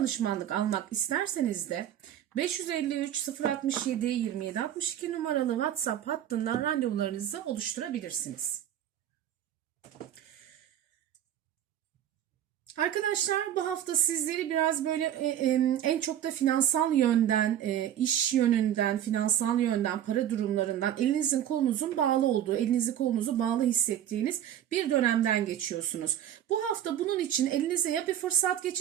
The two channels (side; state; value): left; quieter; 10.9 dB